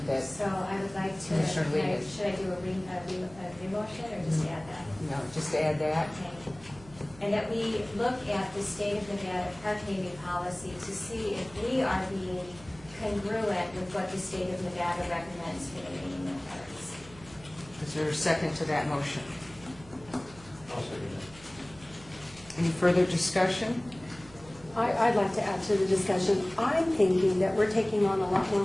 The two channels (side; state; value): right; noise; hum, 21 dB below the sound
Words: that, So I would like to, Commissioner Lee. should I do a new motion or just add that? no, just add that? Okay. And that we look at the state of Nevada park naming policy to see if we are being congruent with what the state of Nevada recommends for the naming of parks. Is there a second to that motion? I'll second that. Any further discussion? I'd like to add to the discussion. I'm thinking that we're taking on a lot more